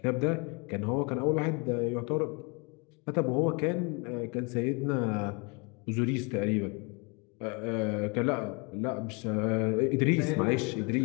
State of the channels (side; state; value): right; quieter; 31.8 dB